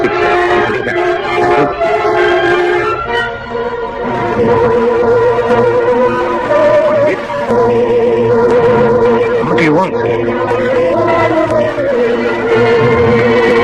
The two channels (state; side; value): identical; both; correlation 1.00